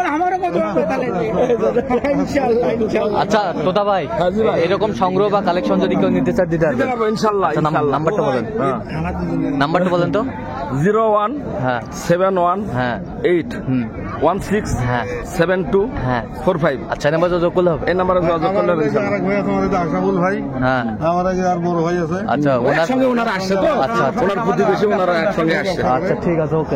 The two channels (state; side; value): identical; both; correlation 1.00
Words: আচ্ছা তোতা ভাই এরকম সংগ্রহ বা কালেকশন যদি কেউ নিতে চায় দিতে পারবেন? ইনশাআল্লাহ। আচ্ছা, নাম্বারটা বলেন। নাম্বারটা বলেন তো। 01 হ্যাঁ 71 হ্যাঁ 8 হুম 16 হ্যাঁ 72 হ্যাঁ। 45। আচ্ছা নাম্বার যোগ করলে হবে? এই নাম্বারে যোগাযোগ করলে হবে ইনশাআল্লাহ। আরেক ভাই আছে আমাদের আশাফুল ভাই, হ্যাঁ আমার আগে আর বড় ভাই আছে। আচ্ছা ওনার একসঙ্গে ওনারা আসছে তো। আচ্ছা আচ্ছা ওনার প্রতিবেশী, ওনারা একসঙ্গে আসছে। আচ্ছা ঠিক আছে, ওকে